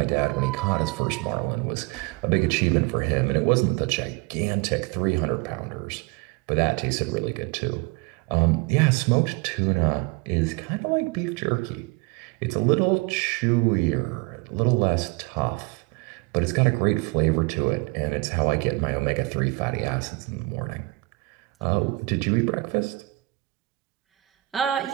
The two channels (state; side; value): quieter; left; 23.3 dB